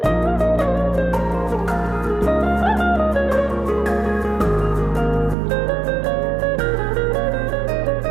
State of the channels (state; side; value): drops out; left; at 5.4 s